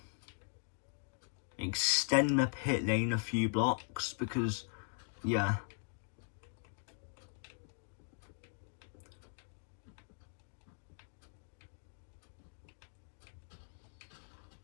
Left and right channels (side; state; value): right; silent; 51 dB below the other